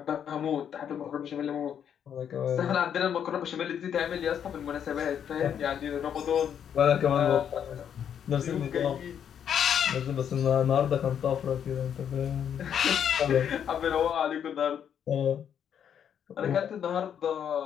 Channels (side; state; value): right; quieter; 8.7 dB